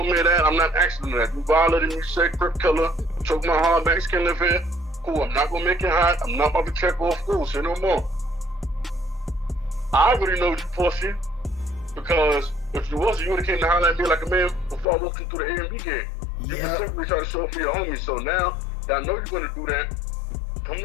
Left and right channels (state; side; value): drops out; right; at 14.9 s